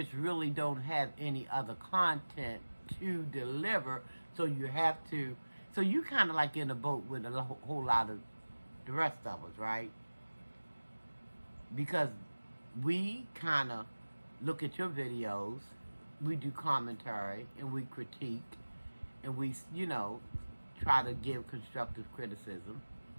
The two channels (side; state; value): both; inverted; correlation -1.00